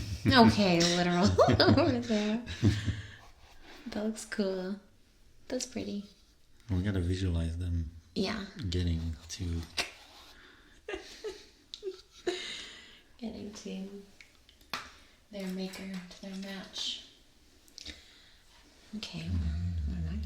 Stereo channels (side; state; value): both; identical; correlation 1.00